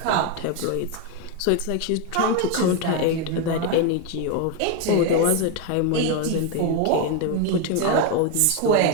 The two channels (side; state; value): both; different; correlation 0.01